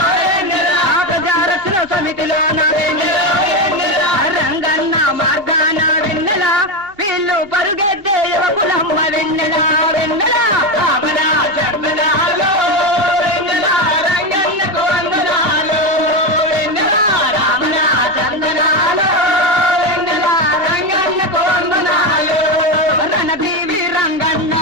ప్రజారక్షణ సమితిలోన రంగన్న మార్గాన వెన్నెల వీళ్ళు పరుగెత్తే యువకులమ్మ వెన్నెల వెన్నెల రామణ చందనాలు వెన్నెల రంగన్నకు వందనాలు వెన్నెల రామణ చందనాలు వెన్నెల రంగన్నకు వందనాలు రణదేవి రంగన్న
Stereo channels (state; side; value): late; left; 2.8 ms